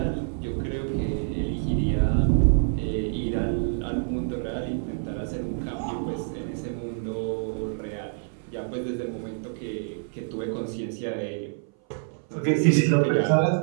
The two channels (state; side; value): silent; left; 58 dB below the other